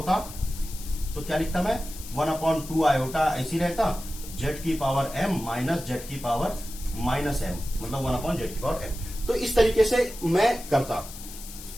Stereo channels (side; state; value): left; noise; hiss, 14 dB below the sound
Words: तो क्या लिखता मैं, 1 अपॉन 2 आयोटा ऐसी रहता, जेड की पावर एम माइनस जेड की पावर माइनस एम, मतलब 1 अपॉन जेड की पावर एम। तो इस तरीके से मैं करता।